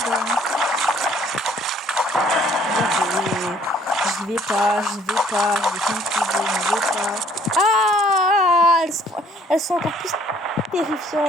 Je vais pas, je vais pas. Ah, elles sont encore plus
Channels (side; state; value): both; normal; correlation 0.60